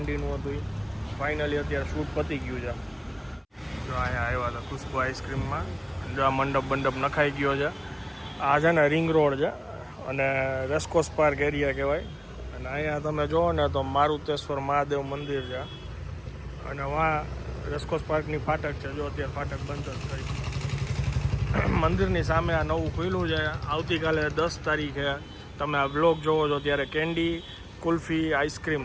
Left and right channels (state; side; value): identical; both; correlation 1.00